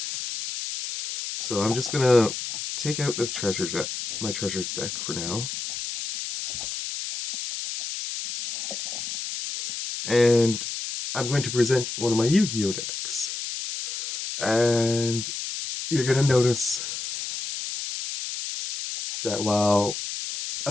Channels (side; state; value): left; noise; hiss, 6 dB below the sound